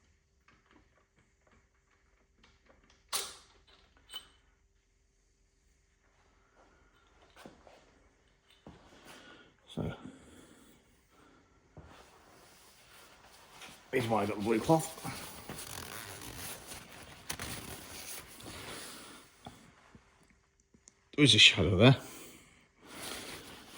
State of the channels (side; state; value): both; identical; correlation 1.00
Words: So here's why I got the blue cloth. There is a shadow there.